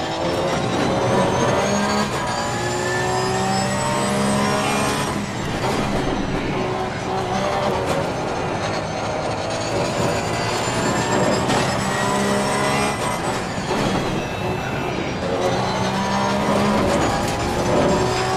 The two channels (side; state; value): both; identical; correlation 1.00